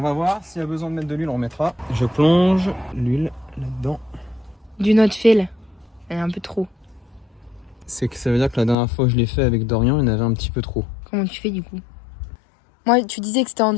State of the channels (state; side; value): drops out; right; at 8.8 s